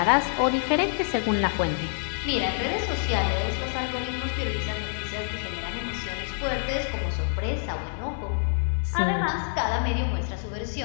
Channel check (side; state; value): right; silent; digital silence